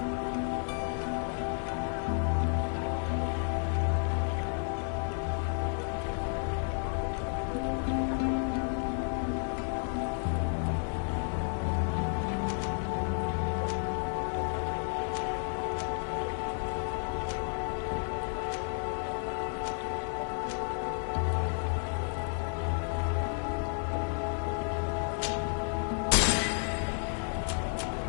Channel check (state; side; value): silent; right; 56 dB below the other